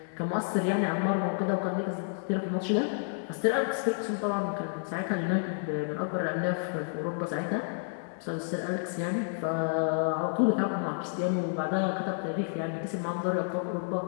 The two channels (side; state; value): right; silent; digital silence